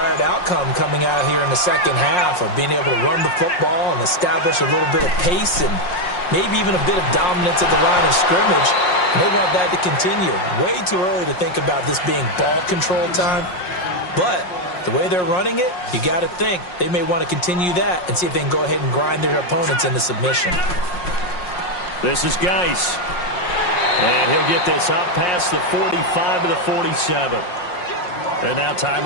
outcome coming out here in the second half of being able to run the football and establish a little bit of pace and maybe even a bit of dominance at the line of scrimmage. And they want that to continue. Way too early to think about this being ball control time. But the way they're running it, you got to think they may want to continue that and see if they can go ahead and grind their opponents into submission. This is Geis. And he'll get this up past the 45 to the 47. And now time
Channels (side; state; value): right; late; 5.6 ms